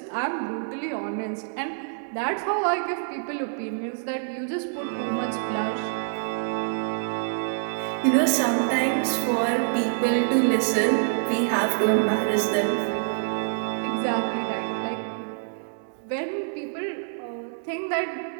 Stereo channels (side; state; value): left; silent; digital silence